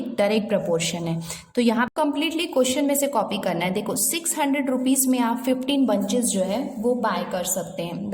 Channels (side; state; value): both; identical; correlation 1.00